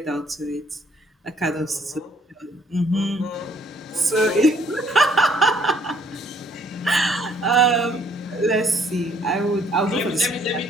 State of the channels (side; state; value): both; normal; correlation 0.63